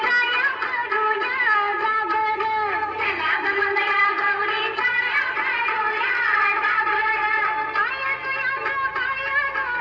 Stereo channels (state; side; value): identical; both; correlation 1.00